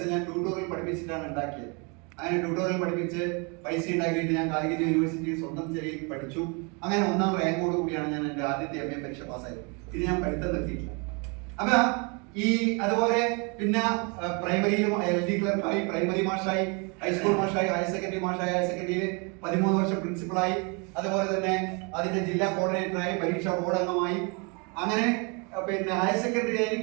ഞാൻ ട്യൂട്ടോറിയൽ പഠിപ്പിച്ചിട്ടാണ് ഉണ്ടാക്കിയത്. അങ്ങനെ ട്യൂട്ടോറിയൽ പഠിപ്പിച്ച് പൈസ ഉണ്ടാക്കിയിട്ട് ഞാൻ കാലിക്കറ്റ് യൂണിവേഴ്സിറ്റിയിൽ സ്വന്തം ചെറിയ പഠിച്ചു. അങ്ങനെ 1ാം റാങ്കോട് കൂടിയാണ് ഞാൻ എൻ്റെ ആദ്യത്തെ MA പരീക്ഷ പാസ്സായത്. പിന്നെ ഞാൻ പഠിത്തം നിർത്തിയിട്ടില്ല. അപ്പൊ അതുപോലെ പിന്നെ പ്രൈമറിയിലും LD ക്ലർക്കായി, പ്രൈമറി മാഷായി, ഹൈസ്കൂൾ മാഷായി, ഹയർ സെക്കൻഡറി മാഷായി, ഹയർ സെക്കൻഡറിയിൽ 13 വർഷം പ്രിൻസിപ്പളായി, അതുപോലെ തന്നെ അതിന്റെ ജില്ലാ കോർഡിനേറ്ററായി, പരീക്ഷാ ബോർഡ് അംഗമായി. അങ്ങനെ പിന്നെ ഹയർ സെക്കൻഡറി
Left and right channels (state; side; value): quieter; left; 32.5 dB